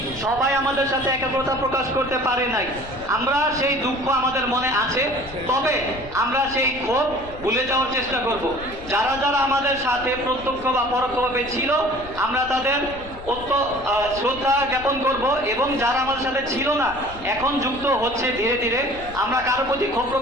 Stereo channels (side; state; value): left; noise; rumble, 16 dB below the sound